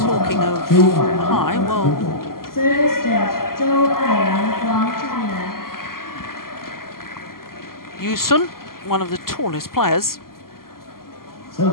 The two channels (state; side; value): late; right; 0.92 ms